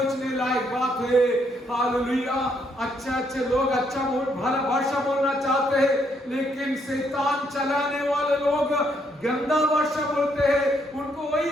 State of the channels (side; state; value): both; normal; correlation 0.73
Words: लायक बात है। हालेलुया। अच्छे लोग अच्छा भला भाषा बोलना चाहते हैं, लेकिन शैतान चलाने वाले लोग गंदा भाषा बोलते हैं, उनको वही